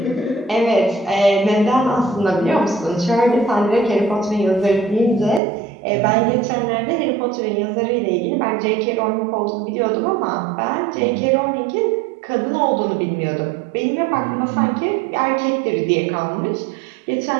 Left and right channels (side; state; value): left; drops out; at 5.4 s